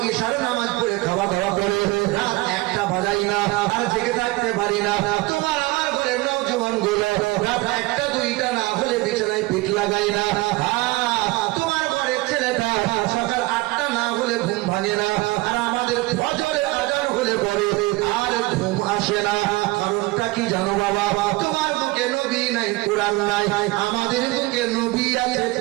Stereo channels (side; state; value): left; quieter; 21.5 dB